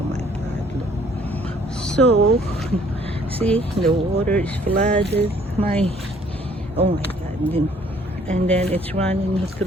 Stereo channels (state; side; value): normal; both; correlation 0.60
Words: my God! Look. So see, the water is flooded. Oh my God! And then it's running